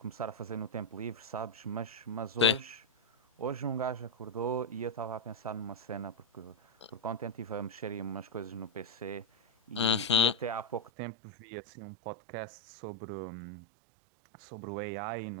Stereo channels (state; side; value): drops out; left; at 10.8 s